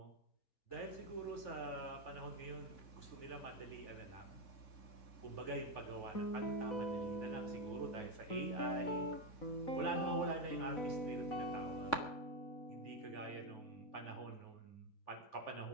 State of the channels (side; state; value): right; late; 3.6 ms